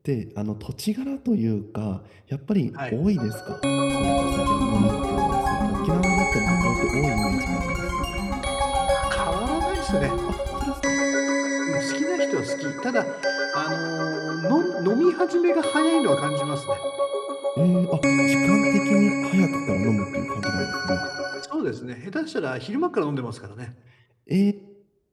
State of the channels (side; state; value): both; identical; correlation 1.00